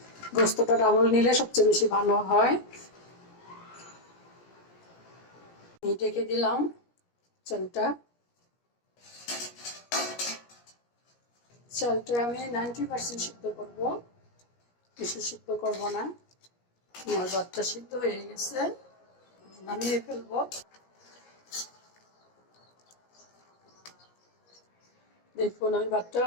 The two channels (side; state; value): right; late; 17 ms